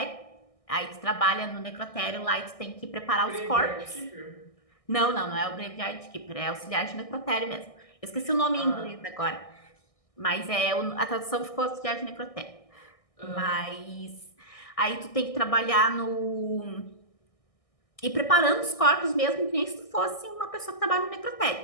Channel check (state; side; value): late; right; 1.6 ms